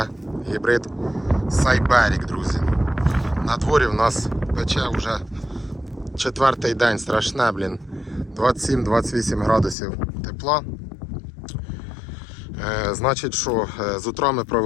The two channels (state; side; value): drops out; right; at 9.8 s